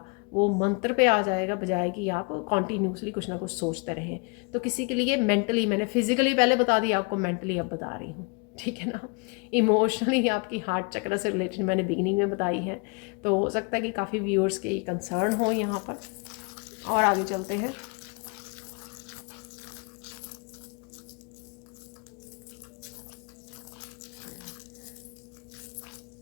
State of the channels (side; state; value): right; quieter; 32.7 dB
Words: वो मंत्र पे आ जाएगा, बजाय कि आप कॉन्टीन्यूसली कुछ ना कुछ सोचते रहें। तो किसी के लिए मेंटली, मैंने फिजिकली पहले बता दिया, आपको मेंटली अब बता रही हूँ, ठीक है ना। इमोशनली आपकी हार्ट चक्र से रिलेटेड मैंने बिगिनिंग में बताई है, तो हो सकता है कि काफ़ी व्यूअर्स के कंसर्न हो यहाँ पर। और आगे चलते हैं।